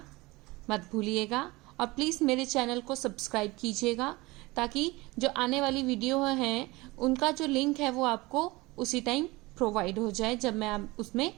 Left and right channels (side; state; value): left; quieter; 22.1 dB